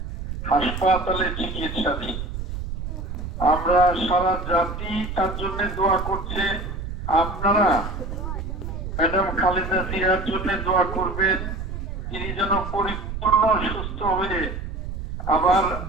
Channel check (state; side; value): noise; right; rumble, 6 dB below the sound